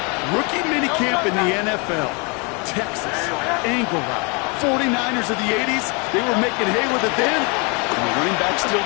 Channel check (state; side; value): quieter; right; 32.0 dB